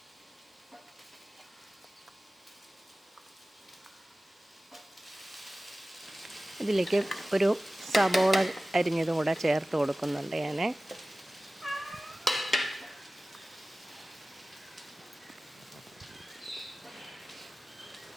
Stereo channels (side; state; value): both; normal; correlation 0.97